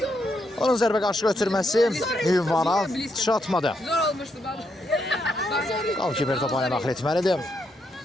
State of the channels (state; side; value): normal; both; correlation 0.78